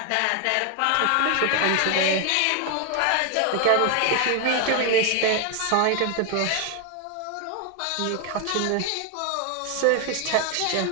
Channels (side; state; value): both; different; correlation 0.01